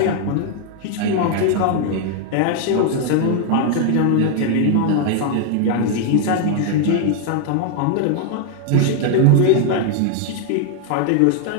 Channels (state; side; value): different; both; correlation 0.00